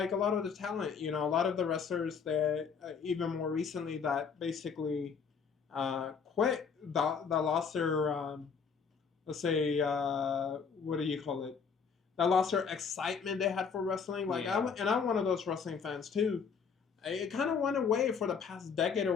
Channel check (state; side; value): quieter; right; 6.0 dB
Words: a lot of the talent, a lot of the wrestlers that, even more recently, that basically quit, that lost their, let's say, what do you call it? That lost their excitement they had for wrestling. Like, Yeah. I'm one of those wrestling fans too. It kind of went away for the past decade